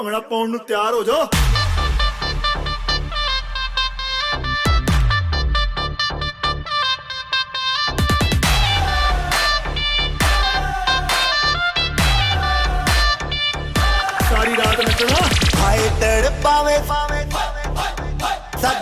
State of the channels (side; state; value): both; identical; correlation 1.00